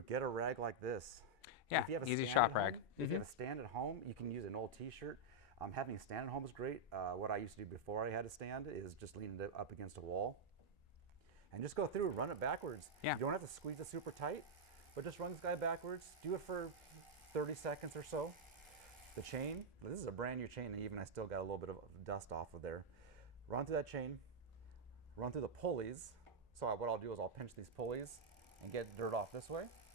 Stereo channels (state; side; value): normal; both; correlation -0.03